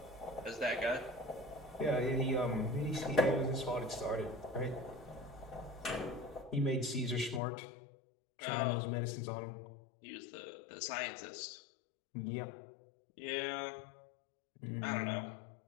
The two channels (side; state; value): right; drops out; at 7.4 s